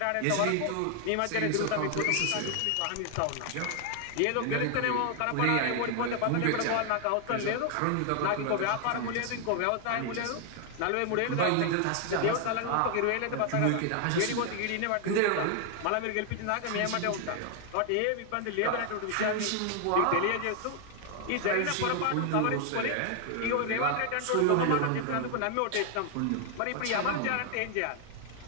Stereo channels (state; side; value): different; both; correlation 0.00